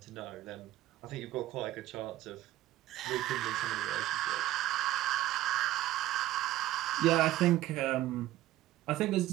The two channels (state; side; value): quieter; left; 14.9 dB